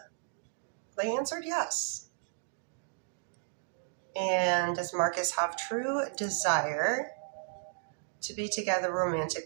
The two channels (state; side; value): silent; left; digital silence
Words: They answered yes. And does Marcus have true desire to be together